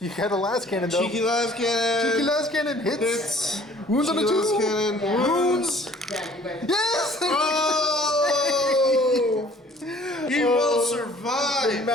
You got a las cannon though. Cheeky las cannon. Cheeky las cannon hits. Wounds on a 2. Las cannon. Wounds. Yes. Oh! He will survive. The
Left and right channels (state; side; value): normal; both; correlation 0.54